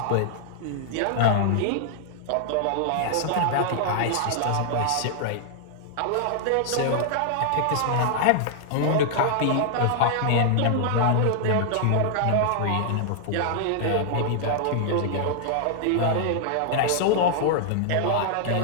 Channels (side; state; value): both; different; correlation -0.01